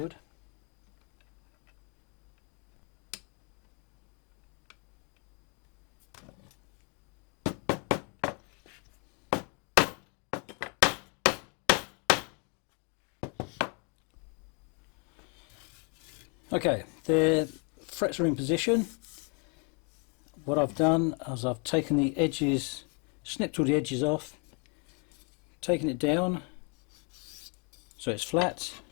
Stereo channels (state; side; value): quieter; right; 35.8 dB